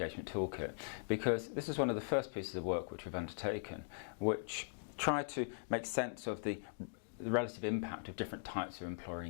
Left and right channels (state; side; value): silent; right; digital silence